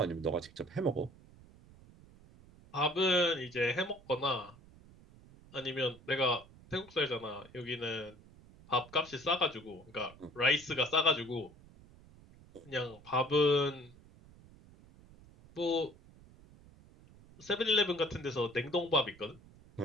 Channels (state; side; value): noise; right; rumble, 23 dB below the sound